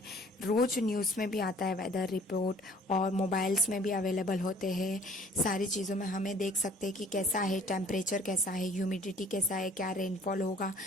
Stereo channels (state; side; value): normal; both; correlation 0.54